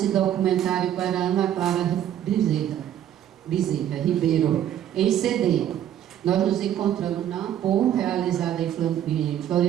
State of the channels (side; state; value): left; quieter; 10.9 dB